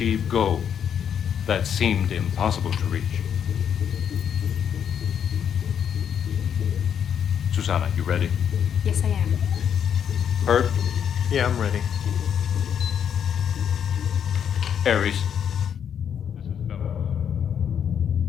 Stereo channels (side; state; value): right; quieter; 8.4 dB